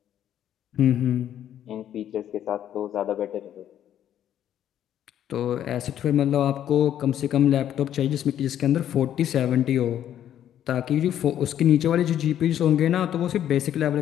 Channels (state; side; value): quieter; right; 10.7 dB